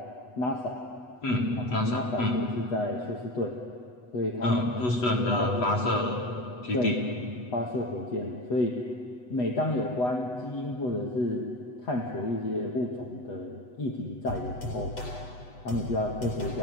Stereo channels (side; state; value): right; late; 8.1 ms